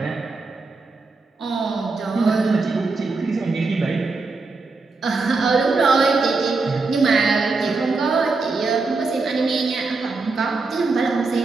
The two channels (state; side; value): quieter; left; 3.9 dB